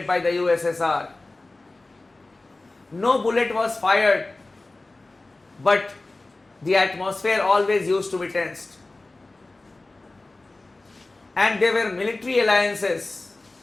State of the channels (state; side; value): quieter; right; 3.1 dB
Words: by the USSR. No bullet was fired, but the atmosphere always used to be tensed. And there were military alliances,